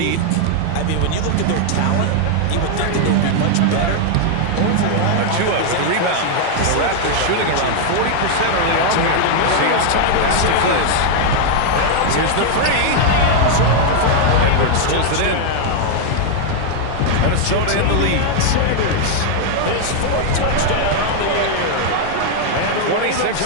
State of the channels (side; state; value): both; different; correlation 0.00